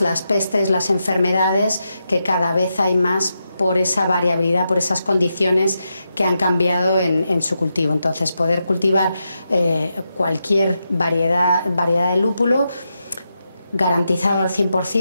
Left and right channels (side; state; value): both; inverted; correlation -0.86